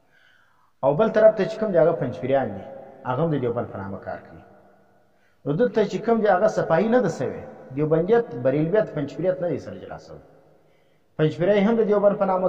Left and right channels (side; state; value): both; identical; correlation 1.00